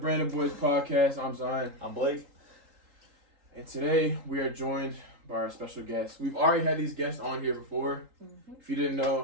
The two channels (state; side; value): late; left; 3.8 ms